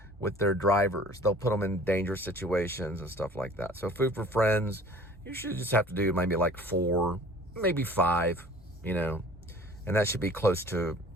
with their drivers. They'll put them in dangerous situations and stuff like that. So Food for Friends, you should just have to do maybe like 4, maybe 5, you know, and that should be close to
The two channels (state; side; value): normal; both; correlation 0.48